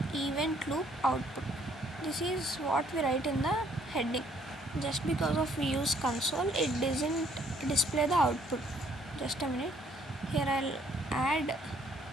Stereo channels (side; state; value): both; normal; correlation 0.64